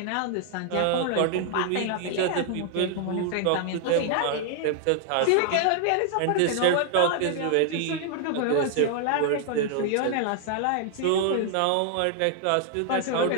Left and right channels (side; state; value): both; different; correlation 0.00